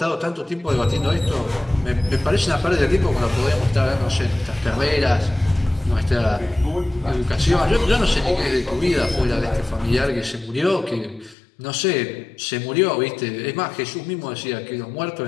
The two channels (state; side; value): drops out; right; at 11.4 s